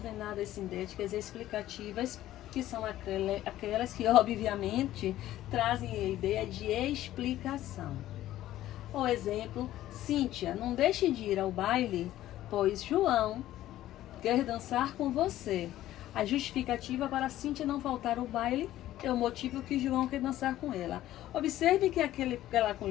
sindéticas explicativas, que são aquelas que, obviamente, trazem a ideia de explicação. Ou exemplo, Cíntia, não deixe de ir ao baile, pois João quer dançar com você. A justificativa para Cíntia não faltar ao baile é o motivo que João quer dançar com ela. Observe que aquela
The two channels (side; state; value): right; quieter; 14.0 dB